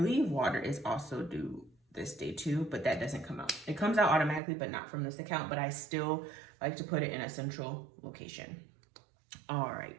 water is also due this day too, but that doesn't come out. It comes out automatically, but not from this account, but I still like to put it in a central location. All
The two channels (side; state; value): left; drops out; at 4.4 s